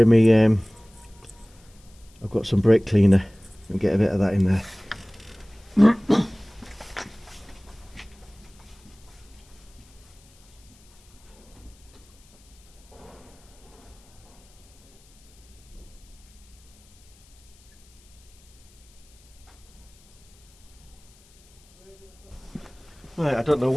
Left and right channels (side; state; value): left; noise; hiss, 28 dB below the sound